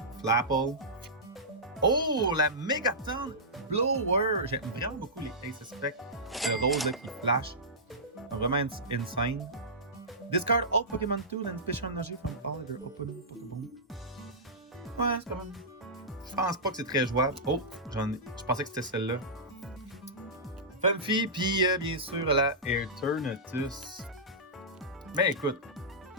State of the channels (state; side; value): normal; both; correlation -0.15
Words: Flapple. Oh, la Megaton Blower! J'aime vraiment beaucoup les Ace Spec. Le rose là, qui flash. Vraiment insane. Discard all Pokémon Tool and Fish Energy from all other open Pokéball. Ouais, c'est quand même. Je pense pas que c'est très jouable. Oh, je pensais que c'était celle-là. Funfi, puis bien sûr la Eternatus. Ben écoute,